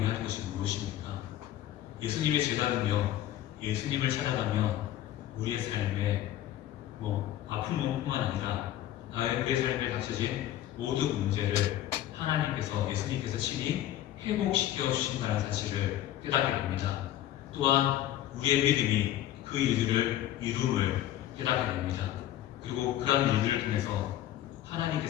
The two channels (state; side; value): quieter; right; 12.8 dB